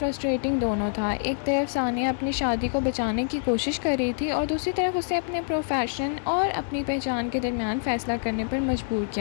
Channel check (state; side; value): silent; right; 61 dB below the other